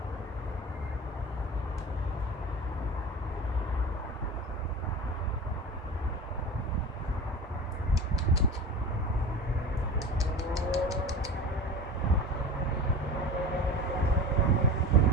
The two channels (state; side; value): normal; both; correlation 0.32